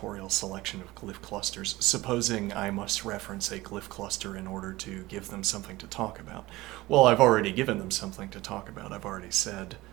selection of glyph clusters, supposing I must reference a glyph cluster in order to give them something to talk about. Well, I've already given them something to talk about. I've already said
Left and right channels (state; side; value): quieter; left; 19.1 dB